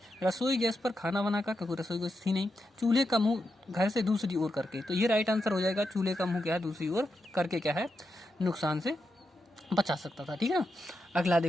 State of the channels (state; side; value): normal; both; correlation 0.86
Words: रसोई गैस पर खाना बनाकर, क्योंकि रसोई गैस थी नहीं, चूल्हे का मुंह घर से दूसरी ओर करके। तो ये राइट आंसर हो जाएगा, चूल्हे का मुंह क्या है दूसरी ओर करके क्या है नुकसान से बचा सकता था, ठीक है ना। अगला